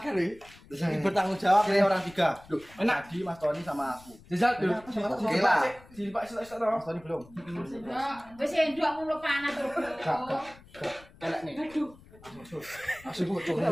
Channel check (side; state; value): left; noise; rumble, 23 dB below the sound